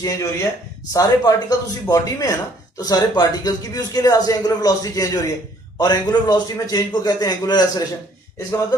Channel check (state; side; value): normal; both; correlation 0.61